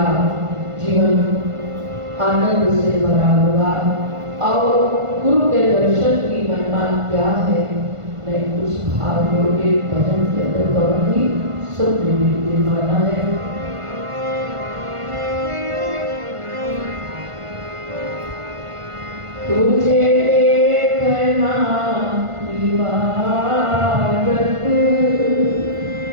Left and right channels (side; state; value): left; late; 1.5 ms